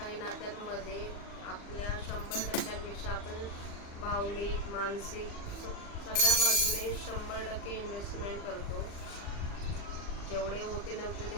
नात्यांमध्ये आपल्या 100% आपण भावनिक, मानसिक सगळ्या बाजूने 100% इन्व्हेस्टमेंट करतो. जेवढे होते नव्हते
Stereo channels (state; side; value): late; right; 40 ms